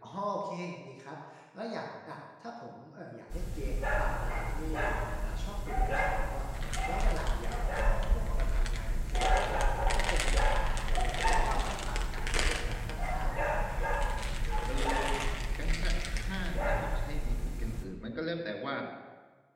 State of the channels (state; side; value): identical; both; correlation 1.00